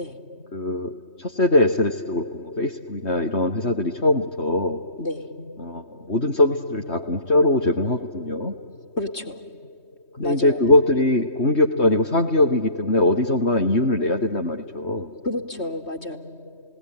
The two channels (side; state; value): right; late; 3.2 ms